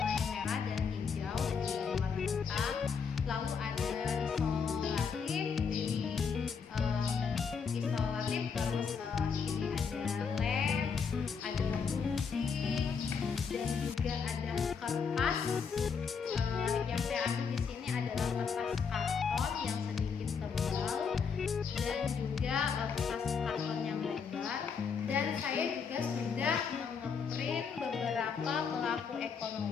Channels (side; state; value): right; quieter; 6.0 dB